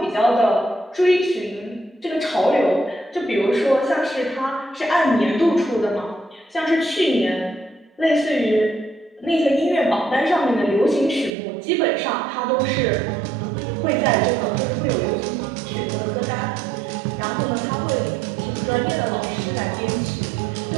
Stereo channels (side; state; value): left; drops out; at 11.4 s